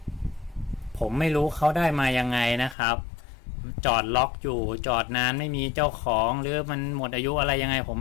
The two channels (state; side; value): drops out; right; at 2.8 s